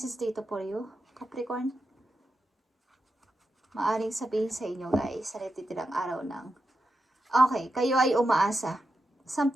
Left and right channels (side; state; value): both; normal; correlation 0.88